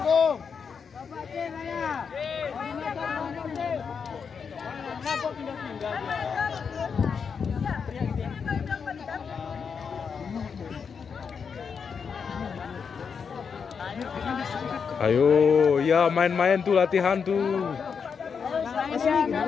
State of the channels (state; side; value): quieter; right; 6.2 dB